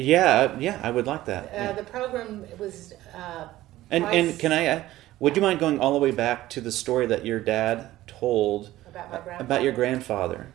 I would like that. The program was and can I, would you mind going all the way back to the story that your dad told about your grandfather?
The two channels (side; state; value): left; quieter; 15.6 dB